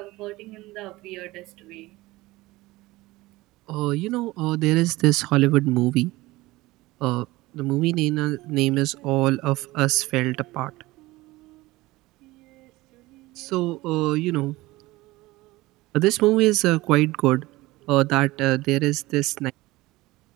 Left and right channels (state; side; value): quieter; left; 19.6 dB